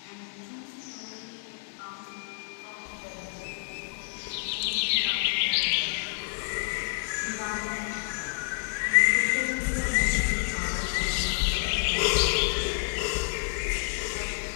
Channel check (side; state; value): right; silent; digital silence